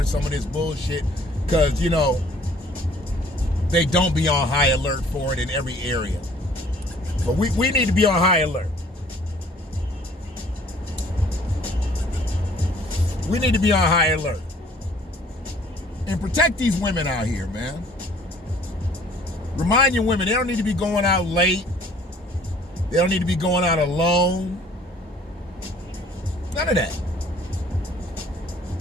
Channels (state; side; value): normal; both; correlation 0.56